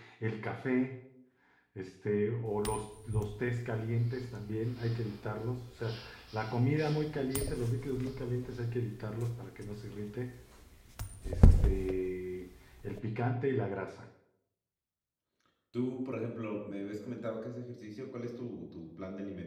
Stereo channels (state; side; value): identical; both; correlation 1.00